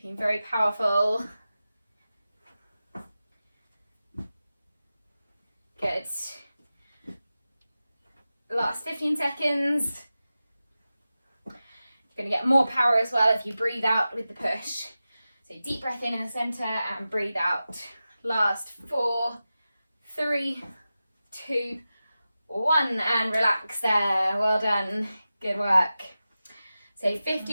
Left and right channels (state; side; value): inverted; both; correlation -0.94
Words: very powerful. Good. Last 15 seconds. You're going to get more power as well if you breathe out with the push. So deep breath in the centre and breathe out. Last 4, 3, 2, 1, and relax there. Well done. Good work. So